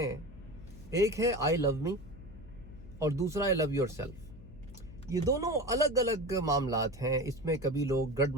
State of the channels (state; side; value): noise; left; hum, 17 dB below the sound